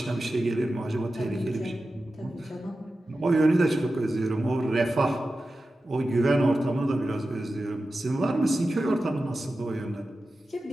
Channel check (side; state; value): both; normal; correlation 0.93